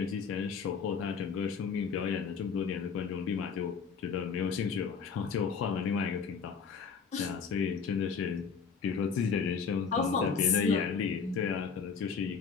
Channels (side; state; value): right; quieter; 5.9 dB